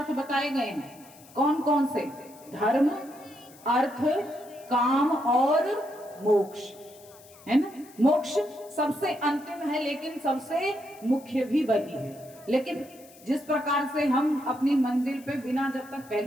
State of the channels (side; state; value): left; noise; hiss, 23 dB below the sound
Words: बताए गए हैं। कौन कौन से? धर्म, अर्थ, काम और मोक्ष, है ना। मोक्ष सबसे अंतिम है लेकिन सबसे मुख्य भी वही है। लेकिन जिस प्रकार से हम अपनी मंजिल पे बिना जब तक